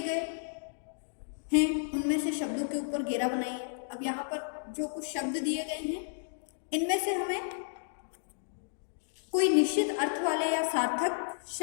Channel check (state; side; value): silent; right; digital silence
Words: गए हैं, उनमें से शब्दों के ऊपर घेरा बनाइए। अब यहाँ पर जो कुछ शब्द दिए गए हैं इनमें से हमें कोई निश्चित अर्थ वाले या सार्थक